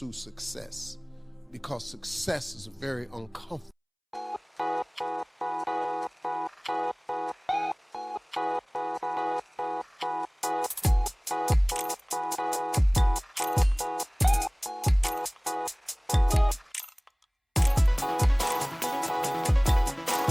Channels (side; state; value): both; identical; correlation 1.00